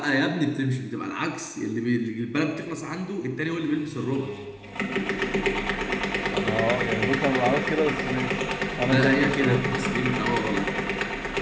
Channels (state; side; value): identical; both; correlation 1.00